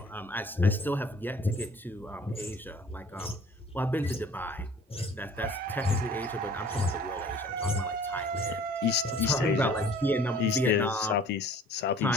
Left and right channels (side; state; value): both; normal; correlation 0.51